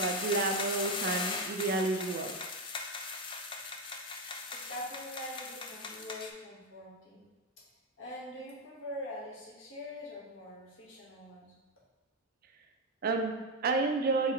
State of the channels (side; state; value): both; normal; correlation 0.08